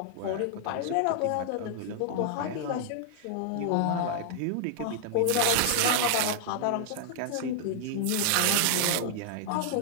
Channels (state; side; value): different; both; correlation -0.01